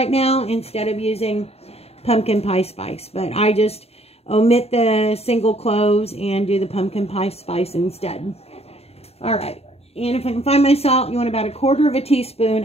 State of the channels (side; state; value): right; late; 0.29 ms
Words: now instead of using pumpkin pie spice. But I just omit the single cloves and do the pumpkin pie spice instead. All right. And if I can find my salt, you want about a quarter of a teaspoon